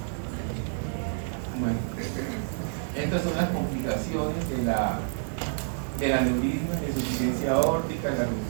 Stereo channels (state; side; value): silent; left; 59 dB below the other